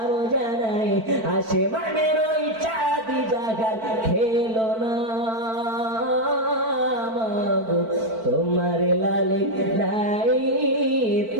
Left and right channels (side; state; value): left; late; 4.5 ms